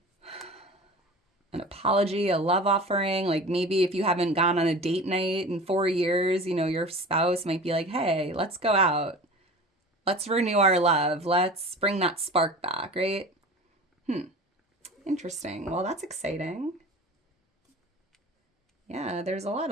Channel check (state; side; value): normal; both; correlation 0.37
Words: An apology, a love offering. Like maybe if you haven't gone on a date night in 4 years, your spouse might be like, hey, let's go out. Let's renew our love. Let's bring that spark back, right? Interesting. Well, that's exciting. Yeah, there's a lot